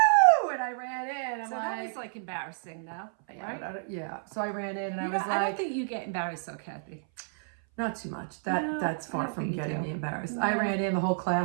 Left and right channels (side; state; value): left; silent; 57 dB below the other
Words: And I ran in. That was embarrassing, though, right? Yeah. So I ran in, and I was like, I don't think you get embarrassed, though, Kathy. Not too much. That's far from getting me embarrassed. No. I ran in, the whole